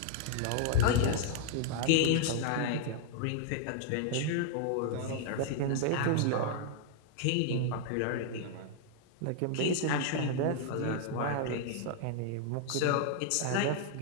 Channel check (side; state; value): both; different; correlation 0.00